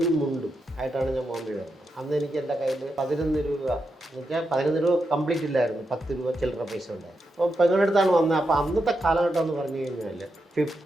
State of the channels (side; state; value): both; normal; correlation 0.85